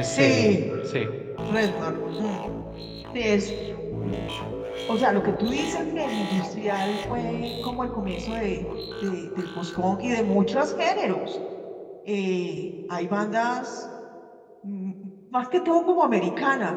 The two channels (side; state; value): both; identical; correlation 1.00